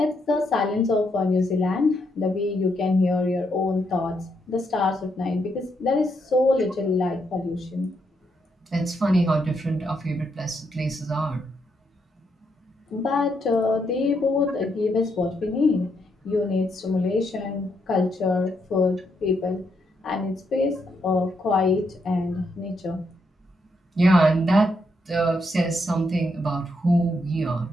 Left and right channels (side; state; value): both; normal; correlation 0.78